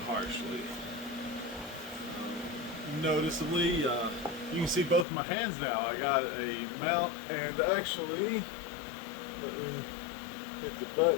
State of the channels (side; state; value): right; drops out; at 5.1 s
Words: harshly. Noticeably, you can see both my hands now. I got a mount, and actually, let me hit the